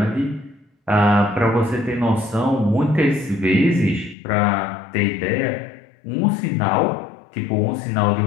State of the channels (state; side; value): drops out; right; at 4.2 s